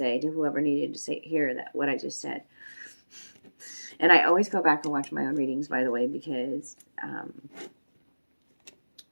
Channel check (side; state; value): both; inverted; correlation -1.00